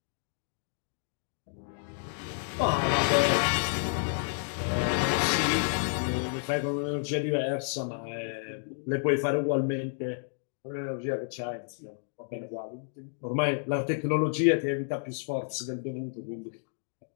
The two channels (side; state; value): right; silent; digital silence